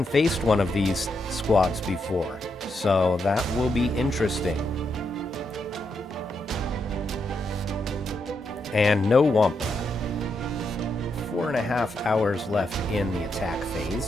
faced one of these squads before, so that will be interesting. And no Wampa. 4.5 hours left in the attack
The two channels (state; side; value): normal; both; correlation 0.81